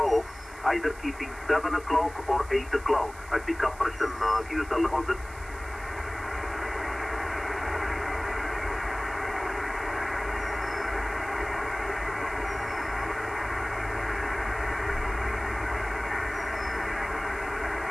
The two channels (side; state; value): right; noise; hiss, 20 dB below the sound